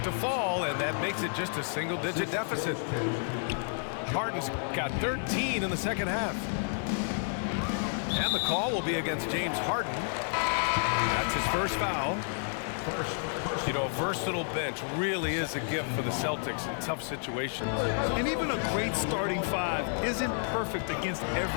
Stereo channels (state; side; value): silent; right; 57 dB below the other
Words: to fall, and that makes it just a single-digit deficit. Harden's got 13 in the second half. And the call will be against James Harden. That's his first foul. You know, a versatile bench really is a gift for the Celtics in tough situations. And even a great starting 5 isn't perfect against